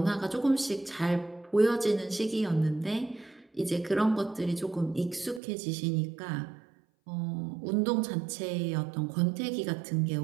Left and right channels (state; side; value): drops out; left; at 5.4 s